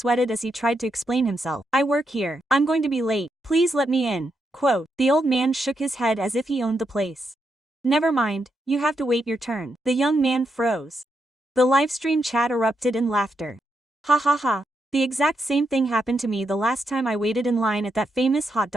as he tried to explain himself. "I work here. I'm going to be late. Please let me in." Quote, the old man shook his head as if he owned the place. "Never mind, you have to wait your turn." The young man froze. The livestream chat erupted in laughter. Ha ha ha. The exact same thing happened to me the last time I waited in line at that famous hot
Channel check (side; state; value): both; normal; correlation 0.82